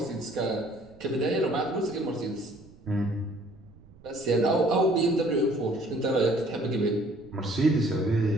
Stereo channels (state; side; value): noise; right; rumble, 24 dB below the sound